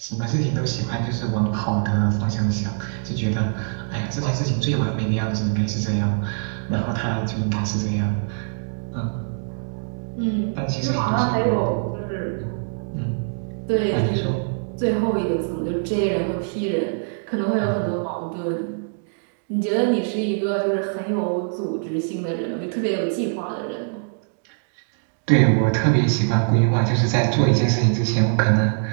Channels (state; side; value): silent; left; digital silence